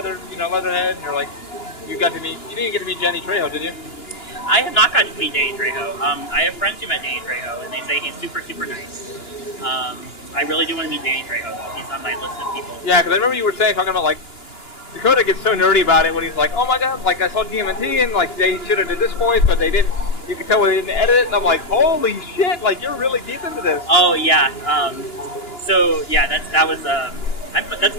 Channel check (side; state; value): right; late; 2.9 ms